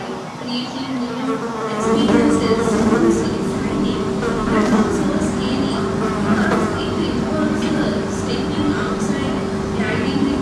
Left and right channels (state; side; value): identical; both; correlation 1.00